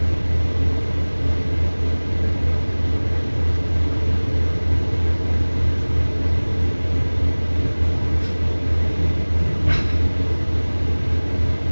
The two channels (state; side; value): inverted; both; correlation -1.00